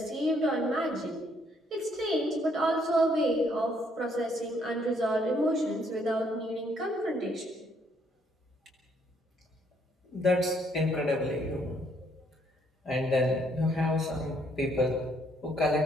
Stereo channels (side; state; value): both; normal; correlation 0.69